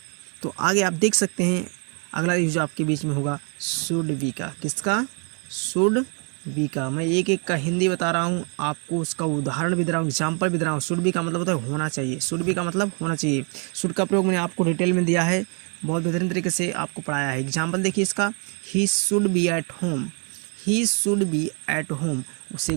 तो आगे आप देख सकते हैं अगला यूज आपके बीच में होगा शुड बी का, किसका, शुड बी का। मैं एक एक का हिंदी बता रहा हूँ आपको, उसका उदाहरण भी दे रहा हूँ, एग्जाम्पल भी दे रहा हूँ। शुड बी का मतलब होता है होना चाहिए, शुड बी का मतलब होना चाहिए। शुड का प्रयोग मैंने आपको डिटेल में दिया है, बहुत बेहतरीन तरीके से आपको पढ़ाया है। एग्जाम्पल देखिए इसका, he should be at home, he should be at home, उसे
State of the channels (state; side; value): quieter; left; 37.5 dB